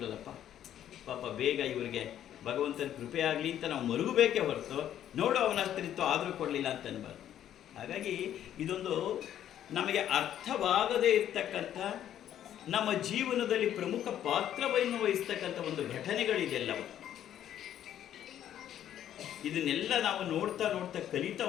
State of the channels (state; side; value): quieter; right; 10.9 dB